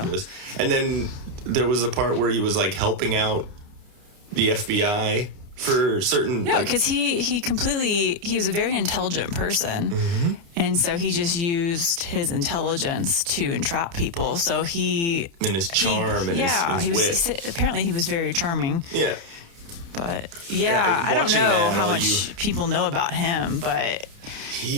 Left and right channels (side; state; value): left; late; 29 ms